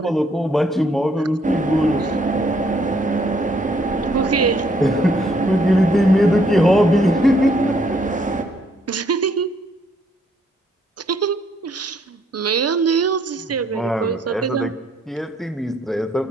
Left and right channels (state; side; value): normal; both; correlation 0.68